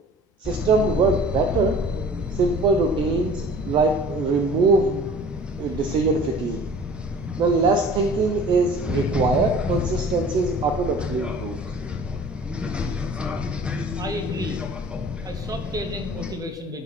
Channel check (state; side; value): normal; both; correlation 0.47